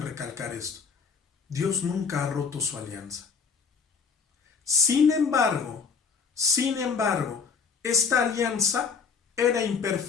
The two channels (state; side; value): quieter; right; 5.5 dB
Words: recalcar esto. Dios nunca ha roto su alianza. Sin embargo, esta alianza era